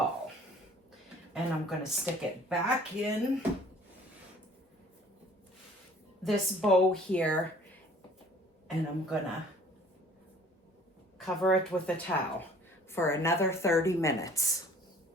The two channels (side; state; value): both; normal; correlation 0.53